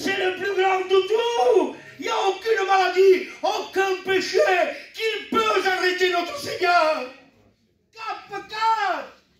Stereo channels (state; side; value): identical; both; correlation 1.00